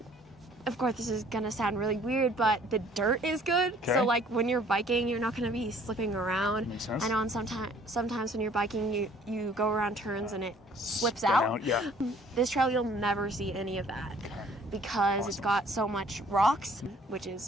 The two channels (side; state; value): both; normal; correlation 0.57